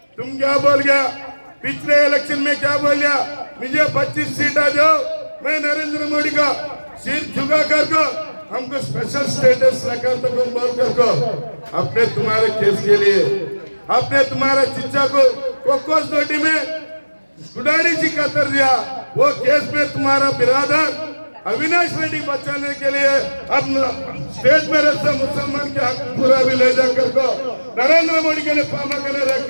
तुम क्या बोल गया, पिछले इलेक्शन में क्या बोल गया, मुझे 25 सीट आ जाओ, मैं नरेंद्र मोदी का सिर झुका कर को हमको स्पेशल स्टेटस रखा तो तुम बोल कर को अपने तुम्हारे केस के लिए अपने तुम्हारे चिच्चा को कोकोस नोटी में गुडारी जी का कर दिया। वो केस में तुम्हारा बिरादर अविनाश रेड्डी बचाने के लिए अब स्टेट में रहते मुसलमान के हक पूरा भी ले जाकर को नरेंद्र मोदी के लिए पामा करने रख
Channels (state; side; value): inverted; both; correlation -1.00